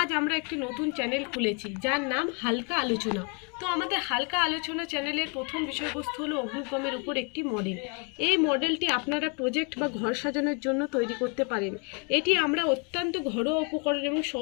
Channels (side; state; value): right; quieter; 35.1 dB